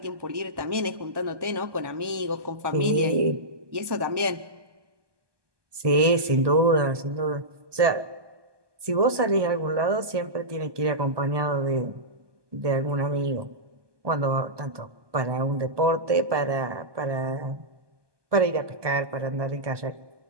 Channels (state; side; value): late; left; 1.2 ms